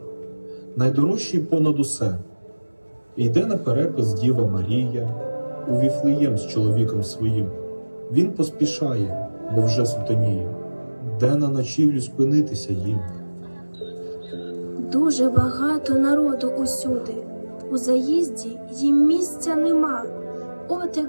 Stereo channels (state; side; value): inverted; both; correlation -1.00